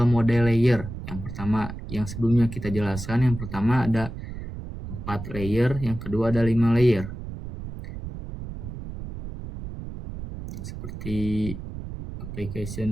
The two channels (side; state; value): right; noise; rumble, 9 dB below the sound